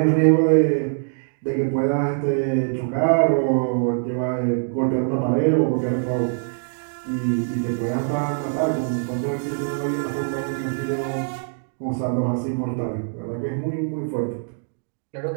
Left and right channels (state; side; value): silent; left; digital silence